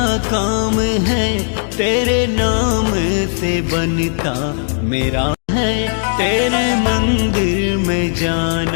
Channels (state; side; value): silent; right; digital silence